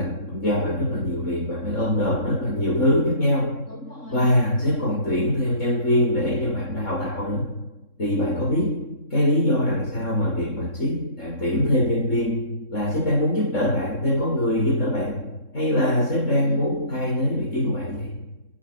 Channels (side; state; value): right; late; 3.7 ms